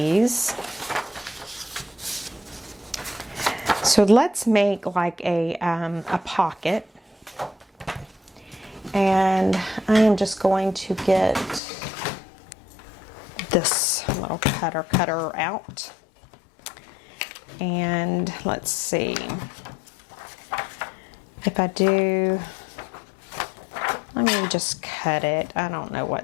So let's make like a pocket. And I am just going to get this little cutter out. And let's see. If I do, let me just cut it. I don't know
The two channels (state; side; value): drops out; right; at 11.6 s